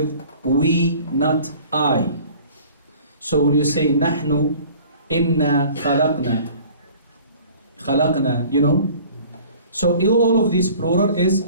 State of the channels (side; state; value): both; inverted; correlation -0.48